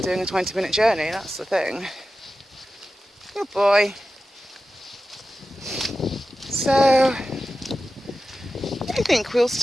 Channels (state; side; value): normal; both; correlation 0.93